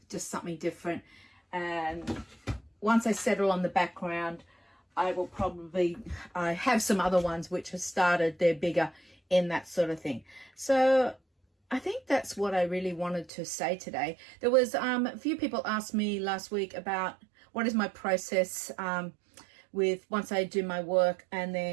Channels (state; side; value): drops out; left; at 13.3 s